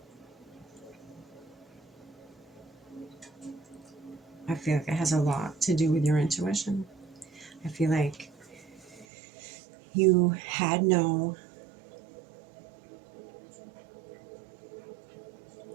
I feel like it has a lot to do with your intuition. I feel like you had no,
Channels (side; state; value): left; drops out; at 9.1 s